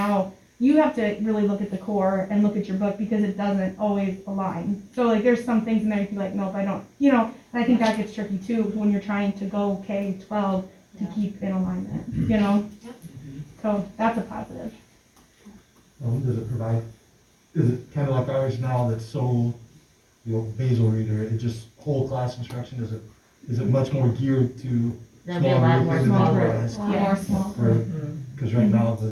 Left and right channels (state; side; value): identical; both; correlation 1.00